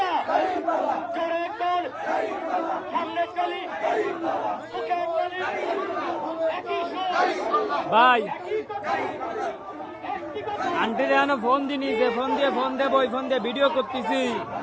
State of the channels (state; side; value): identical; both; correlation 1.00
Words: জোরে কর সামনে চলি ভাই আন্টি রে ফোন দিনি যে ফোন দেব ওই ফোন দিয়ে ভিডিও করতেছি